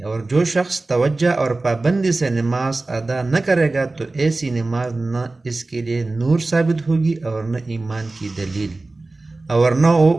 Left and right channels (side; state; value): left; quieter; 3.2 dB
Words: اور جو شخص توجہ اور پابندی سے نماز ادا نہ کرے گا تو ایسی نماز نہ اس کے لیے نور ثابت ہوگی اور نہ ایمان کی دلیل، اور نہ وہ